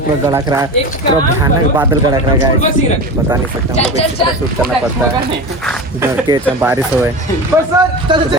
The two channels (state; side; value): normal; both; correlation 0.27